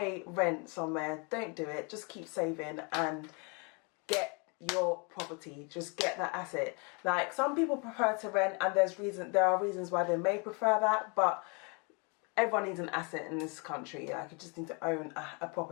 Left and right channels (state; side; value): quieter; right; 33.2 dB